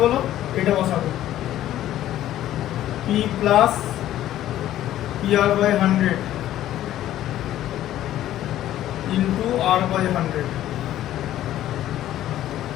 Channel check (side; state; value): right; quieter; 13.0 dB